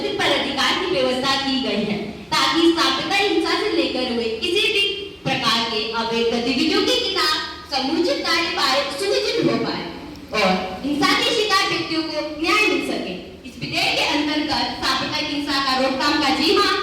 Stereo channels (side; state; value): both; identical; correlation 1.00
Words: पदाधिकार की व्यवस्था की गई है, ताकि सांप्रदायिक हिंसा से लेकर हुए किसी भी प्रकार के अवैध गतिविधियों के खिलाफ समुचित कार्यवाही सुनिश्चित हो पाए और हिंसा के शिकार व्यक्तियों को न्याय मिल सके। इस विधेयक के अंतर्गत सांप्रदायिक हिंसा का रोकथाम का जिम्मा